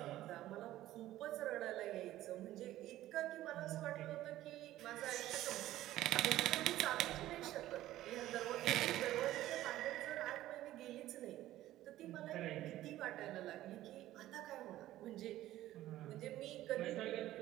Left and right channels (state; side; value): quieter; left; 14.6 dB